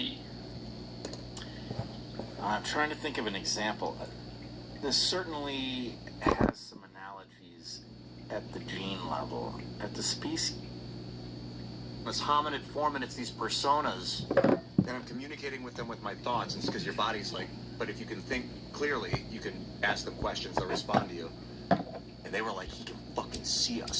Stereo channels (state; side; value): identical; both; correlation 1.00